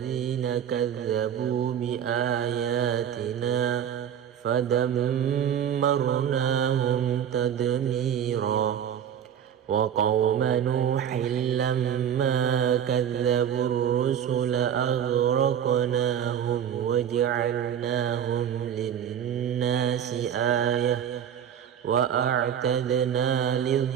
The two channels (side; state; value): left; quieter; 9.1 dB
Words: كذبوا بآياتنا فدمرناهم تدميرا وقوم نوح لما كذبوا الرسل أغرقناهم وجعلناهم للناس آية وأعتدنا